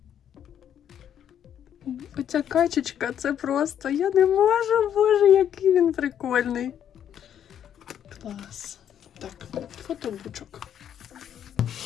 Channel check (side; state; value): right; quieter; 9.5 dB